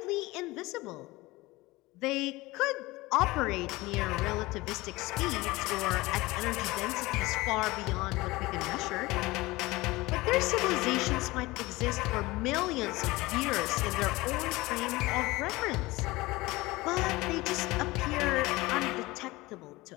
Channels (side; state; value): right; quieter; 20.8 dB